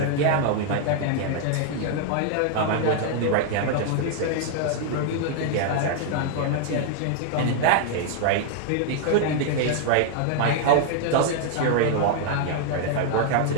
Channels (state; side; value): different; both; correlation 0.00